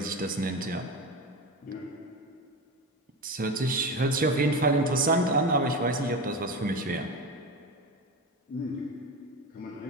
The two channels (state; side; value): normal; both; correlation 0.24